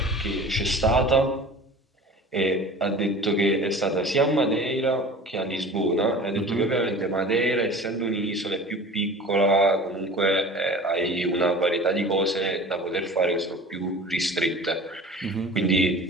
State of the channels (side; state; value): both; normal; correlation 0.40